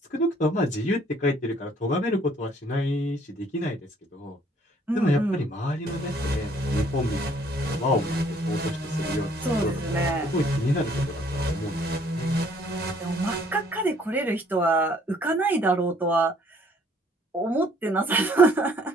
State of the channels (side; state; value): both; normal; correlation 0.61